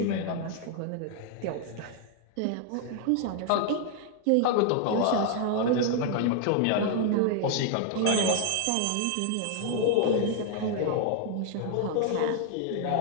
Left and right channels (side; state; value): both; different; correlation 0.00